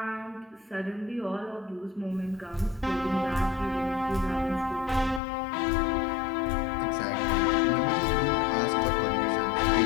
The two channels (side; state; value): right; drops out; at 5.2 s